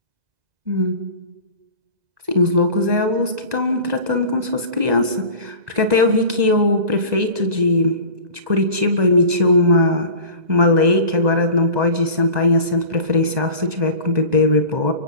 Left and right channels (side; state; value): left; late; 2.0 ms